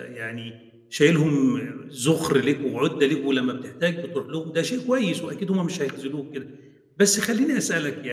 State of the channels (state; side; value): identical; both; correlation 1.00